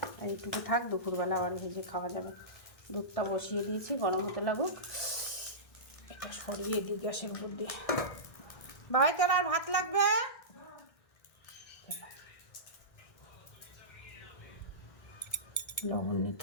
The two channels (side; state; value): right; late; 1.6 ms